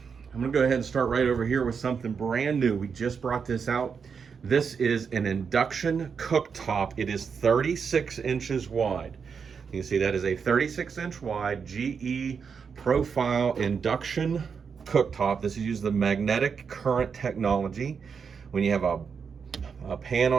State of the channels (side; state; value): left; quieter; 6.1 dB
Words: I'm gonna go ahead and start right over here with something brand new. We just brought this out. This is an induction cooktop. It is 36 inches wide. You can see that is a 36-inch wide GE profile induction cooktop. This is using the magnetic current technology. When you have a pan